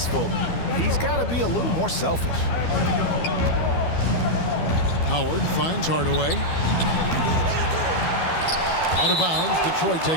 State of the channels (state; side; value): late; right; 12 ms